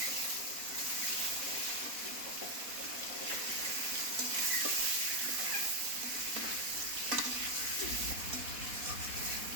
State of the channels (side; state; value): left; late; 4.1 ms